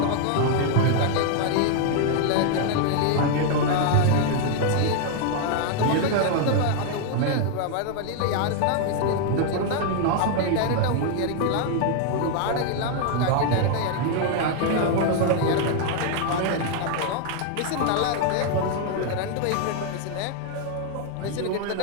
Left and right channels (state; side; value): different; both; correlation 0.00